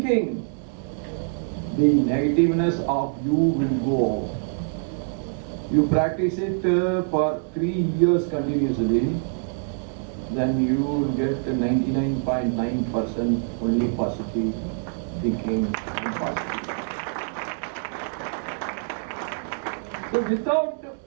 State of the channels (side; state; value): left; silent; digital silence